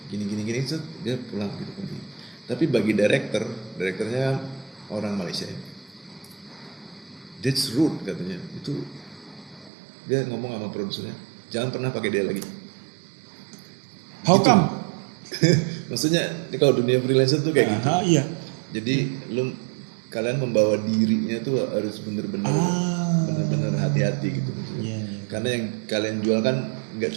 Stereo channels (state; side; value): drops out; left; at 9.7 s